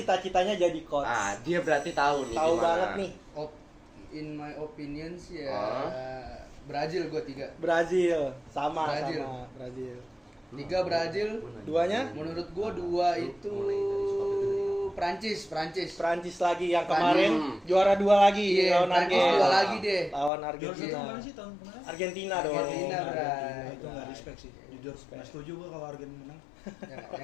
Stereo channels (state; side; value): drops out; right; at 20.3 s